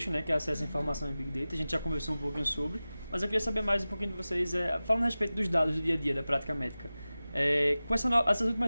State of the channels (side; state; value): both; inverted; correlation -0.97